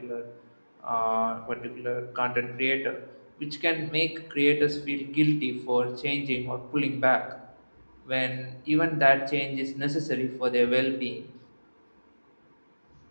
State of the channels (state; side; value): inverted; both; correlation -1.00